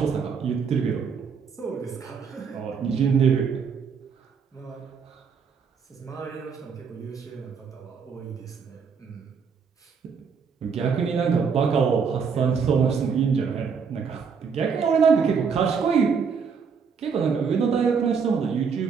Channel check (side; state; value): left; quieter; 6.1 dB